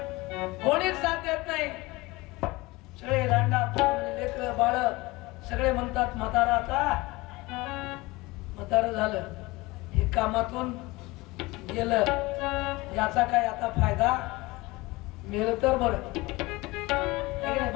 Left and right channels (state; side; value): quieter; right; 21.9 dB